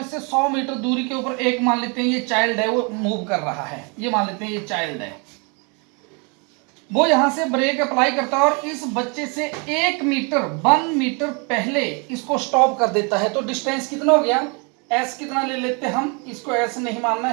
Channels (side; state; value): left; quieter; 33.5 dB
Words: 100 मीटर दूरी के ऊपर एक मान लेते हैं ये चाइल्ड है, वो मूव कर रहा है। ये मान लेते हैं ये चाइल्ड है, वो यहां से ब्रेक अप्लाई करता है और इस बच्चे से 1 मीटर पहले इसको स्टॉप कर देता है। तो डिस्टेंस कितना हो गया, s कितना ले लेते हैं हम, इसको s नहीं मानना